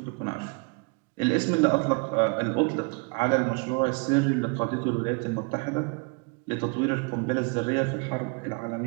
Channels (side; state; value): left; quieter; 32.9 dB